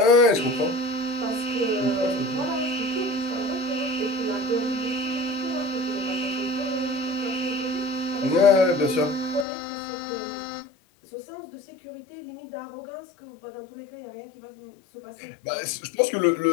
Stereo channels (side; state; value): right; drops out; at 9.5 s